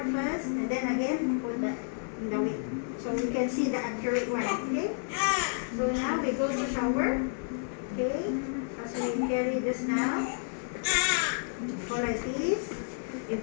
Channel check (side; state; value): right; silent; 57 dB below the other